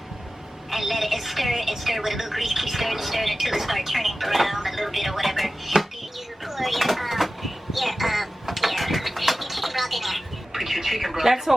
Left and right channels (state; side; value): normal; both; correlation 0.95